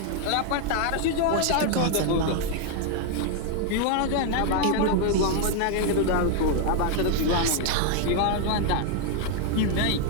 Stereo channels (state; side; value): different; both; correlation 0.00